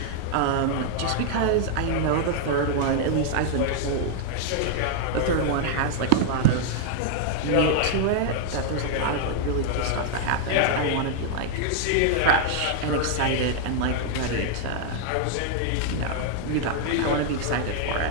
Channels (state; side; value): different; both; correlation 0.00